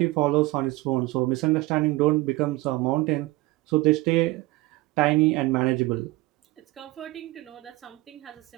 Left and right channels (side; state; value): left; quieter; 20.1 dB